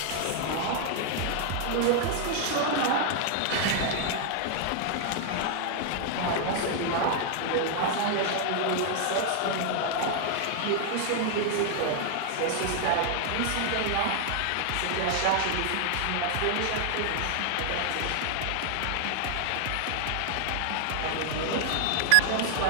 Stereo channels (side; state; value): both; different; correlation 0.00